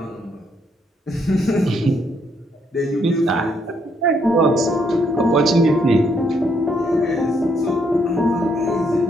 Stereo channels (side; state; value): both; normal; correlation 0.73